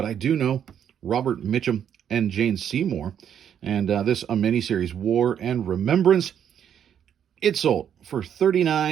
I do know Robert Mitchum and Jane Seymour. And this a miniseries, War and Remembrance. It sold for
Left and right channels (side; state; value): left; quieter; 9.0 dB